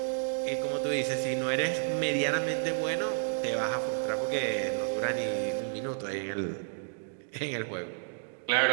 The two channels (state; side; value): silent; left; digital silence